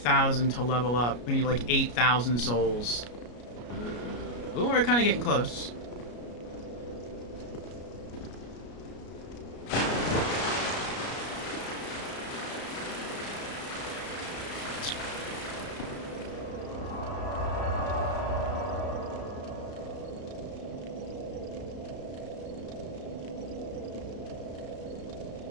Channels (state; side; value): late; right; 33 ms